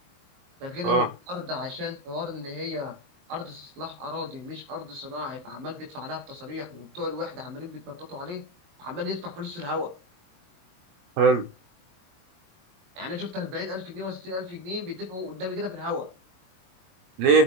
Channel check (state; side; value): late; left; 22 ms